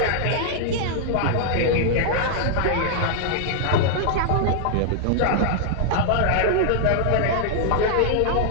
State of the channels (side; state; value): both; different; correlation -0.01